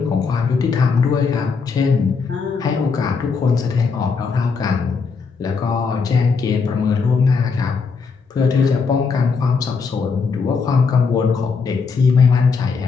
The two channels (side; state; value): right; quieter; 5.1 dB